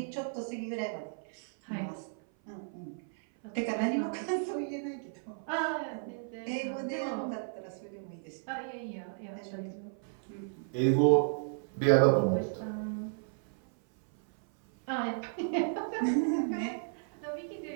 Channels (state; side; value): silent; left; 55 dB below the other